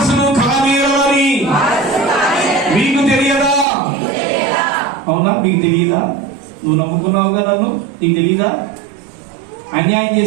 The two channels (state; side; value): drops out; left; at 3.7 s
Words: కానేరని మీకు తెలియదా? అవునా? మీకు తెలియదా? నువ్వు నమ్ముకున్నావుగా నన్ను, నీకు తెలియదా? అన్యాయం